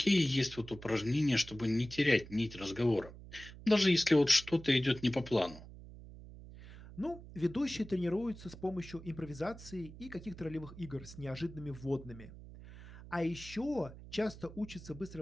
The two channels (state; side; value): noise; right; hum, 16 dB below the sound